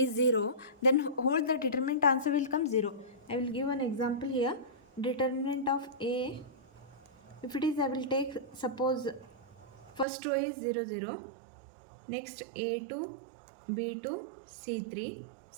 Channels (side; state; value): left; drops out; at 10.1 s